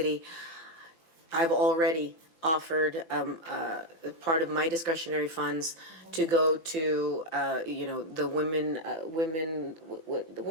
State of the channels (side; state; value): right; late; 5.9 ms